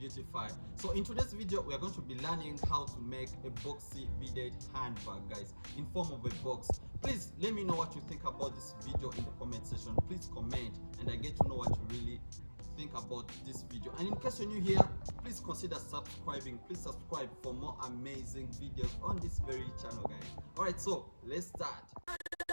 So in today's video we are going to be learning how to make a boxy beaded handbag, guys, in form of a box. Please let me know what you think about this video in the comment section. Please comment and I get to know what you really think about this video. And in case you're new here, please consider subscribing. Please subscribe for more amazing videos on this very channel, guys. Alright, so let's start.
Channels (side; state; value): both; inverted; correlation -1.00